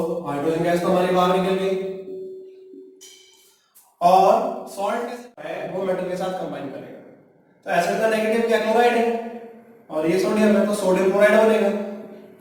हाइड्रोजन गैस तो हमारी बाहर निकल गई, और सॉल्ट है वो मेटल के साथ कंबाइन करेगा। तो एसिड का नेगेटिव क्या, क्लोराइड है, और ये सोडियम है तो सोडियम क्लोराइड बनेगा।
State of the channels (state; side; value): identical; both; correlation 1.00